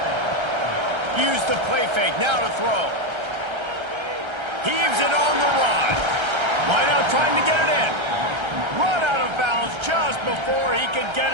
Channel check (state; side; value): late; left; 1.3 ms